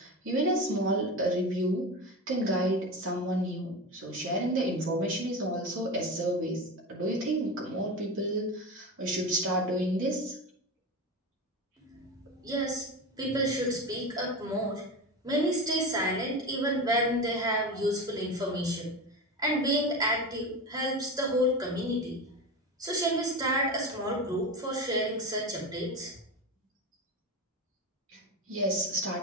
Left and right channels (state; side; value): normal; both; correlation 0.23